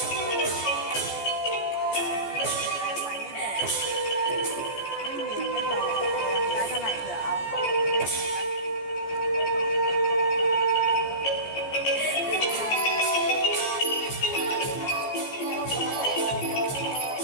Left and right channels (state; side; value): late; right; 14 ms